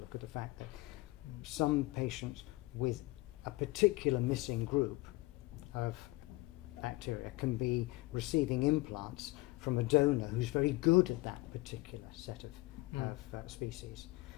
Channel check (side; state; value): right; quieter; 20.4 dB